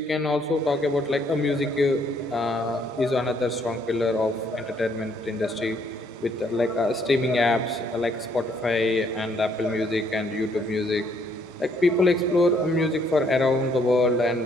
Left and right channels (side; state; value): both; normal; correlation 0.68